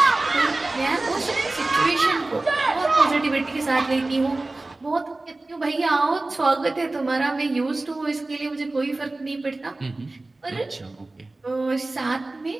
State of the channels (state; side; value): quieter; left; 3.0 dB